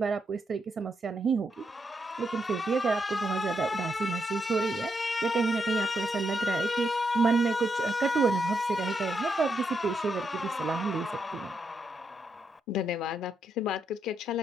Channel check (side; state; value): both; normal; correlation 0.81